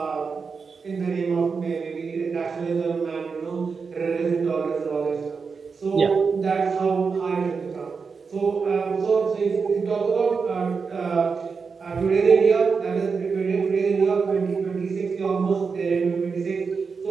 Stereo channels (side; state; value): left; quieter; 5.2 dB